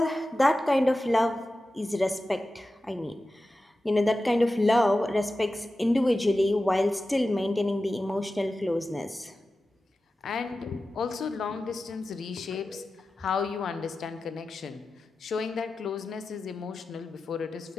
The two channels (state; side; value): normal; both; correlation 0.94